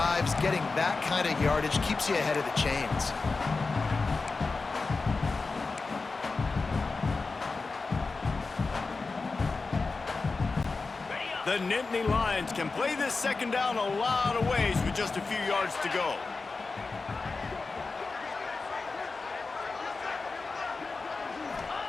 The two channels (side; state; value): right; quieter; 4.0 dB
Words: getting that kind of yardage keeps you ahead of the chains. The Nittany Lions can play this 2nd down a lot of ways with just a few yards to go.